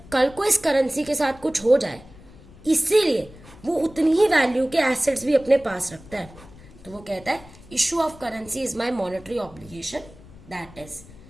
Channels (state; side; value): noise; left; rumble, 21 dB below the sound